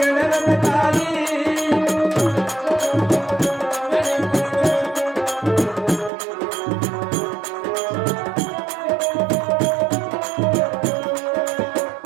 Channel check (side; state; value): left; drops out; at 6.1 s